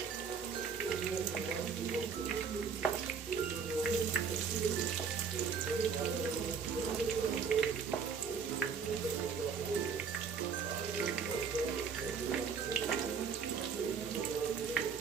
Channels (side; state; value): left; quieter; 6.1 dB